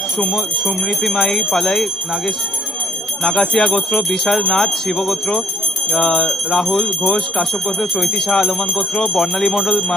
সুমৃতিমাই পালাই নাগাসিয়া গোত্র, বিশাল নাথ শিব গোত্র, রাহুল ঘোষ কাশ্যপ গোত্র, চৈতি শাহ আলমান গোত্র, বর্ণালী মণ্ডল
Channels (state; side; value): normal; both; correlation 0.67